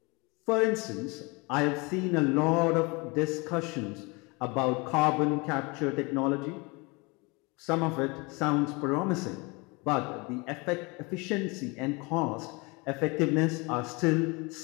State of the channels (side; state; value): right; quieter; 27.5 dB